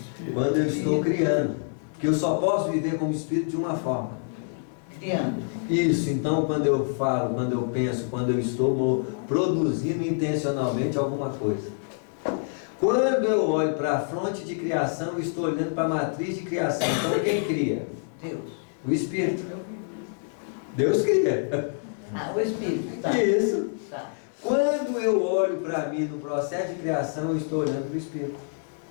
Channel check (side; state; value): right; silent; digital silence